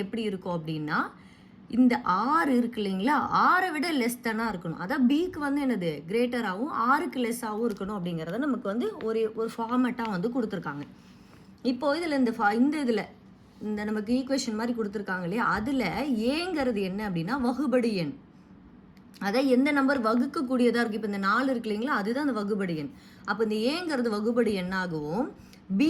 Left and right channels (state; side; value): identical; both; correlation 1.00